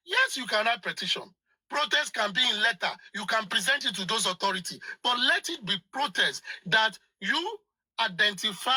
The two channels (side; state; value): both; identical; correlation 1.00